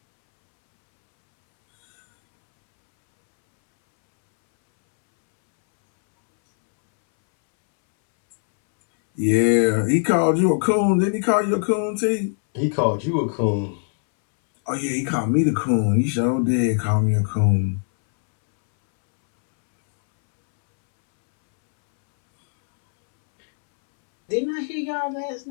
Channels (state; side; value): silent; right; 65 dB below the other